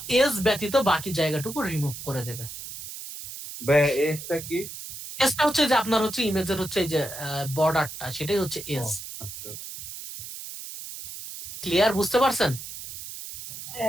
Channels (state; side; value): noise; right; hiss, 10 dB below the sound